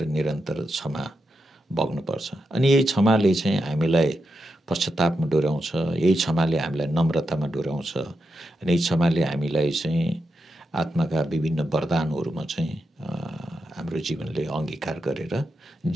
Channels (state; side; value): normal; both; correlation 0.86